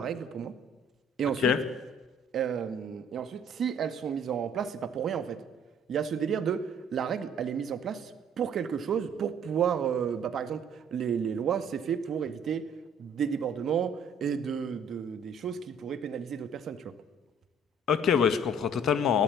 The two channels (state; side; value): normal; both; correlation 0.57